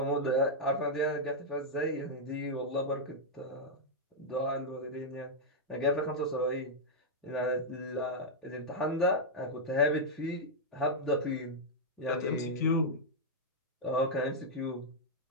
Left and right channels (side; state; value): both; normal; correlation -0.05